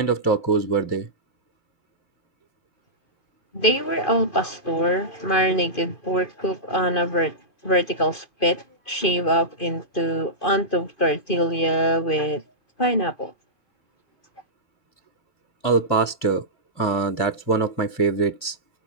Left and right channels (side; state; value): right; late; 2.4 ms